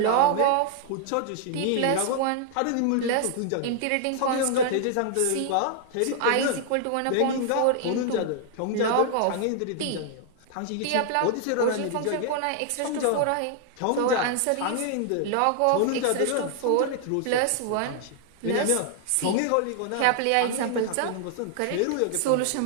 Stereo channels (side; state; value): both; different; correlation 0.00